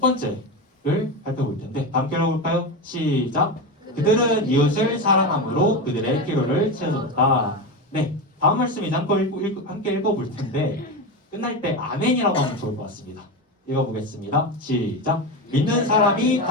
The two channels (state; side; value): normal; both; correlation 0.18